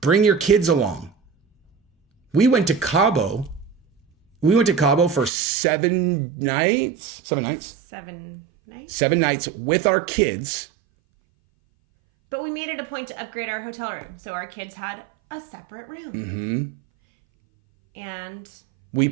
Bring your kids along. We went to Cabo. We went to Cabo for 7 nights. 7 nights? 7 nights. 7 nights with our kids. But we made it a point to upgrade our hotel room. So our kids had a separate room. Mm-hmm. And we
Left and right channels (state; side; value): drops out; left; at 5.3 s